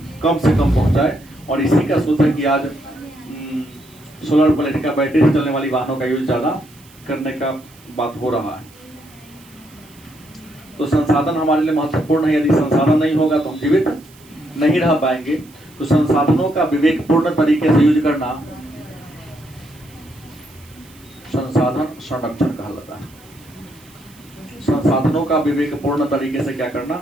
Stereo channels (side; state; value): right; noise; hiss, 26 dB below the sound